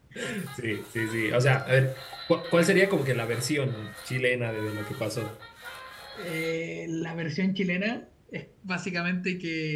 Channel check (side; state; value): both; identical; correlation 1.00